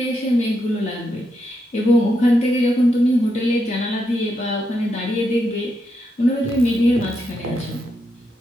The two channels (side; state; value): both; normal; correlation 0.82